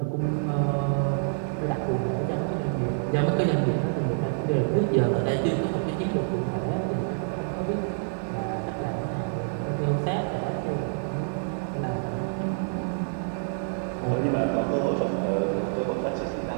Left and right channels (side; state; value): left; silent; digital silence